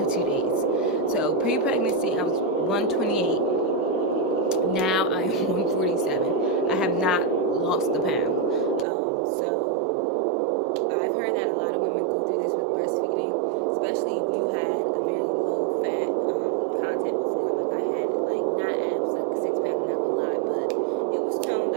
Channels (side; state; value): left; drops out; at 8.8 s